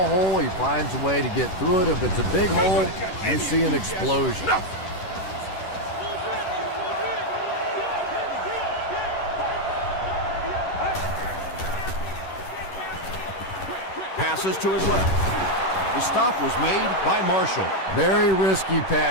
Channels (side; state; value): right; late; 11 ms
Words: hole, he finds a way to get through it. If it's a big hole, you see an explosion. Passes to his left. The stop was made by Marshall. Very risky